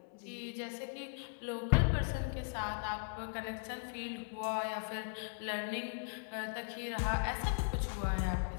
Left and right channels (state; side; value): silent; right; digital silence